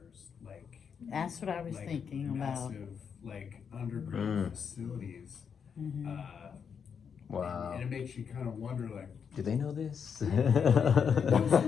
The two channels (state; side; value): quieter; right; 6.8 dB